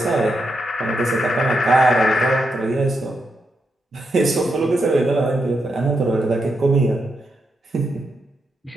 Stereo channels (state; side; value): normal; both; correlation 0.83